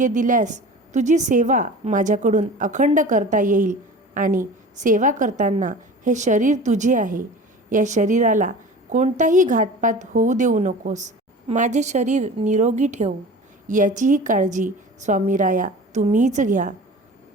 दिल्यास तुझी सेवा माझ्याकडून अखंड करता येईल आणि सेवा करताना हे शरीर तुझे आहे. या शरीराला कोणताही घातपात होऊ देऊ नकोस. माझे शरीर निरोगी ठेव. याचीही काळजी स्वामीराया तुम्हीच घ्या.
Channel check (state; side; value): normal; both; correlation 0.38